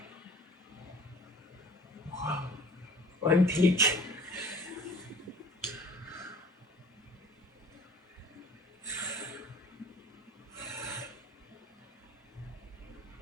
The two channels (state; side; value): normal; both; correlation 0.49